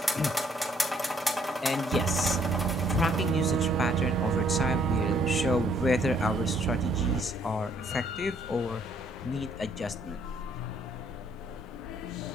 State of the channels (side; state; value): both; normal; correlation 0.66